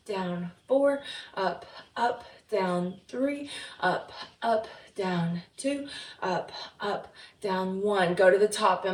down, 4, up, down, 3, up, down, 2, up, down, 1. Go to the top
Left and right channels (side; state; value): both; identical; correlation 1.00